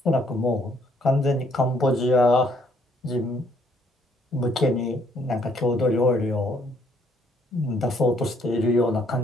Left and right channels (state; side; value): normal; both; correlation 0.67